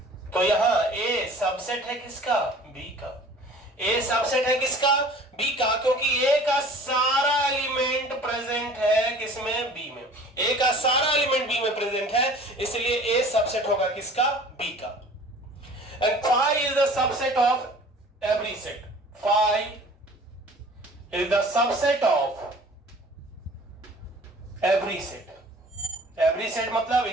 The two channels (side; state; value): both; normal; correlation 0.47